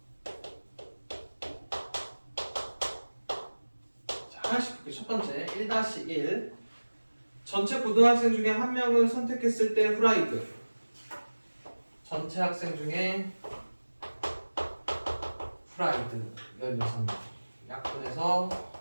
자, 하나씩 볼게요. 첫 번째 1-1 전체 고등학생 중에 한 명을 선택했을 때 후라이드 전체 학생 중에 후라이드 16명 약분해서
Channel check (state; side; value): inverted; both; correlation -1.00